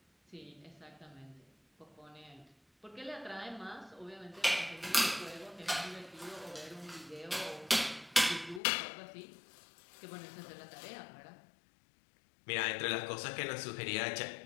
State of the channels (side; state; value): right; drops out; at 8.6 s